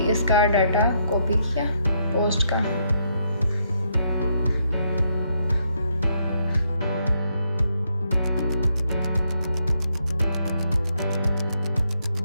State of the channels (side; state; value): both; inverted; correlation -0.76